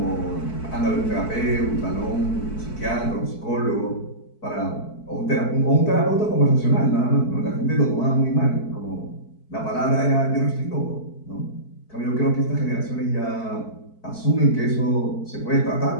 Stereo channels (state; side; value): late; right; 4.6 ms